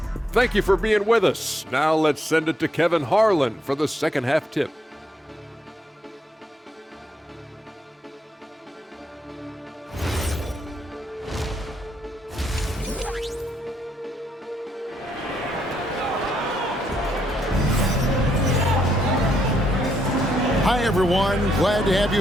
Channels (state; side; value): normal; both; correlation 0.76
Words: Thank you for being with us. Now let's send it to Kevin Harlan for the second half tip. Hi, everyone. Glad to have